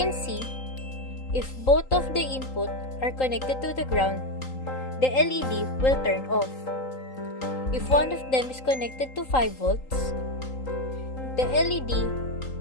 see, if both of the input are connected to the ground, the LED will turn off. If one of them is connected to 5 volts, the LED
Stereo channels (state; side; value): late; right; 3.8 ms